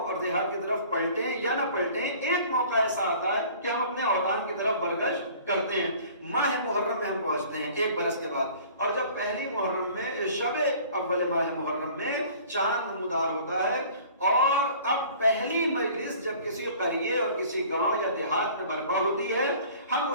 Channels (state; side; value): inverted; both; correlation -0.49